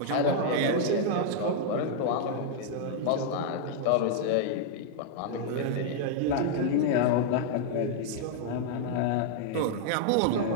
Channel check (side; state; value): both; different; correlation -0.01